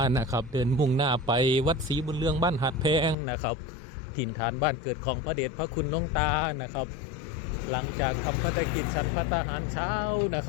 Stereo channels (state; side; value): drops out; right; at 3.2 s